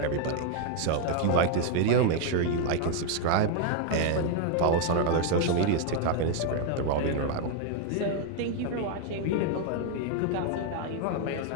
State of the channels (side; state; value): both; different; correlation 0.00